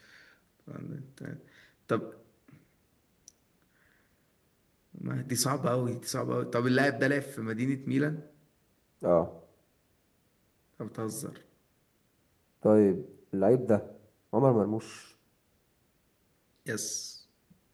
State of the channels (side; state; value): both; identical; correlation 1.00